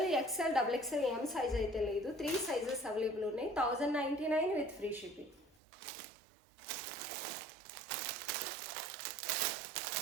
XL, XXL, M size అయితే లేదు. 3 సైజెస్ అవైలబుల్ ఉన్నాయి. 1099 విత్ ఫ్రీ షిప్పింగ్.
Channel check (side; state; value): left; drops out; at 5.6 s